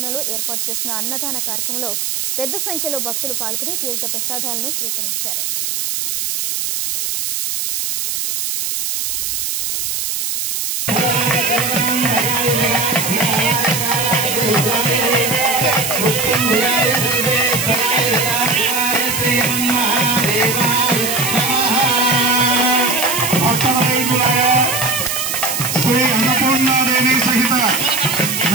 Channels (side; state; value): right; noise; hiss, 2 dB below the sound